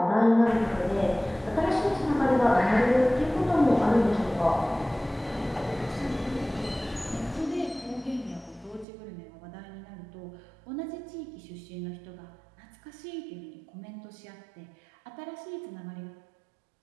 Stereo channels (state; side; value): drops out; left; at 8.8 s